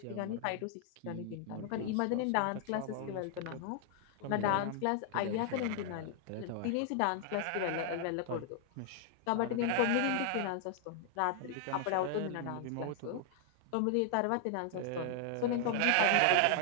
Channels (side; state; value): both; different; correlation 0.00